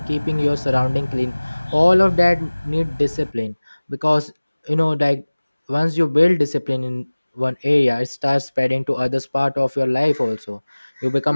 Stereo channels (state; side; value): inverted; both; correlation -1.00